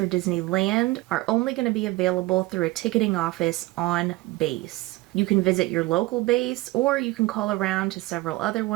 Disneyland are only going to be available through a ticketing office on base. You can visit your local base, or you can call around to several other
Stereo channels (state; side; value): quieter; left; 19.9 dB